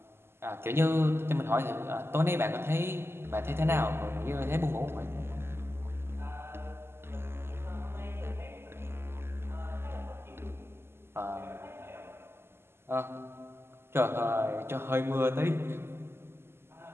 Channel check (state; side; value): late; left; 0.12 ms